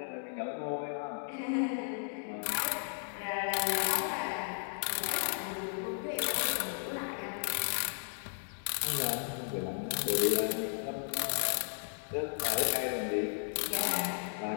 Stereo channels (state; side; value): silent; right; digital silence